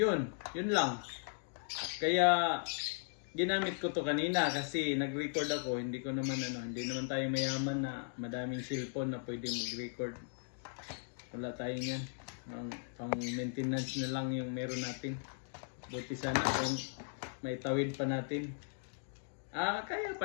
lang. Kaya ginamit ko to kanina kasi nag-record ako, hindi naman tayo mayaman na madaming cellphone na pwede mag-record. Wala tayo niyan. Pang maintenance na lang yung meron natin. Buti sana kung may tawid pa natin. Kaya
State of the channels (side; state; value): right; silent; digital silence